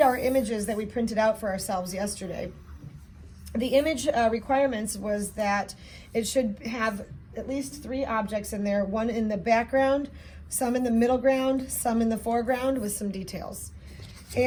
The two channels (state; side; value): identical; both; correlation 1.00